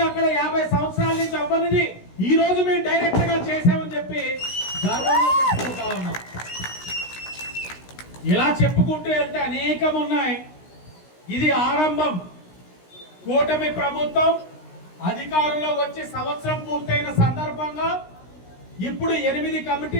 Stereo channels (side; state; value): right; late; 16 ms